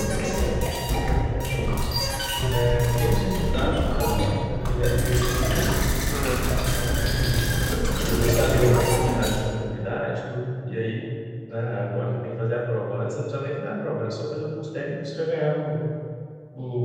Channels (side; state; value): both; identical; correlation 1.00